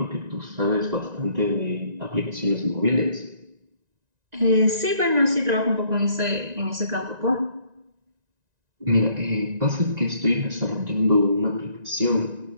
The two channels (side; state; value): left; late; 1.9 ms